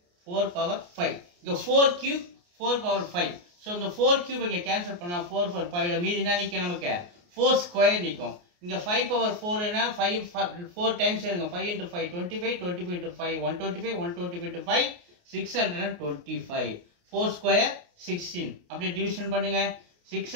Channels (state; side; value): late; left; 28 ms